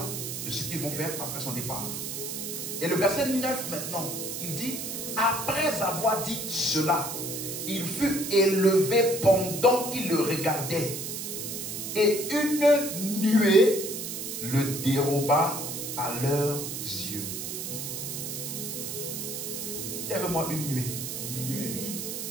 de ce qu'ils vont faire après son départ. Et le verset 9 maintenant, il dit: après avoir dit cela, il fut élevé pendant qu'il le regardait, et une nuée le déroba à leurs yeux. Il y avait moi une nuée.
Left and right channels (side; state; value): right; noise; hiss, 5 dB below the sound